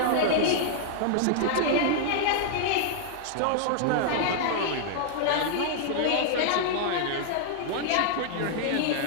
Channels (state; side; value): different; both; correlation -0.01